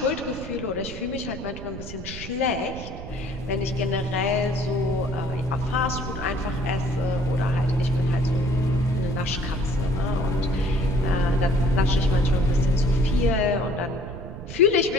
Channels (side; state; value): right; noise; rumble, 11 dB below the sound